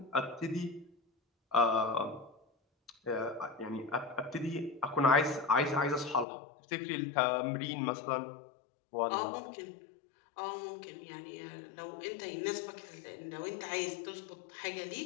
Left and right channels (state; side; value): drops out; right; at 6.2 s